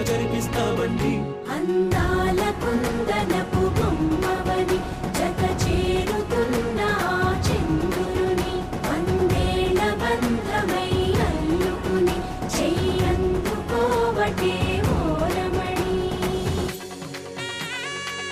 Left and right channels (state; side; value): identical; both; correlation 1.00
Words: జరిపిస్తామండి. అందాల కుందనపు బొమ్మవని జత చేరుతున్న చంద్రుని, వందేళ్ల బంధమై అల్లుకుని చెయ్యందుకోవటే ఓరమణి.